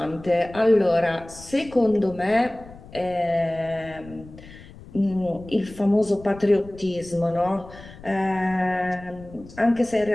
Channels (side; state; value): left; noise; rumble, 19 dB below the sound